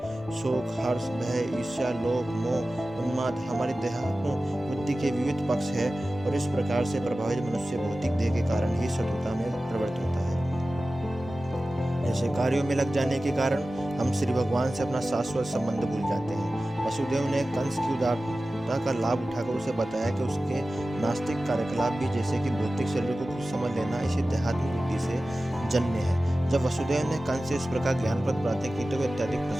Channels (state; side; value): normal; both; correlation 0.95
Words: शोक, हर्ष, भय, ईर्ष्या, लोभ, मोह, उन्माद हमारी देहात्म बुद्धि के विविध पक्ष है और इस प्रकार से प्रभावित मनुष्य भौतिक देह के कारण ही शत्रुता में प्रवृत्त होता है। ऐसे कार्यों में लग जाने के कारण हम श्री भगवान से अपना शाश्वत संबंध भूल जाते हैं। वसुदेव ने कंस की उदारता का लाभ उठाकर उसे बताया कि उसके नास्तिक कार्यकलाप भी, जैसे कि भौतिक शरीर को खुद समझ लेना, इसी देहात्म बुद्धि से जन्य है। जब वसुदेव ने कंस से इस प्रकार ज्ञानप्रद बातें की तो वे अत्यधिक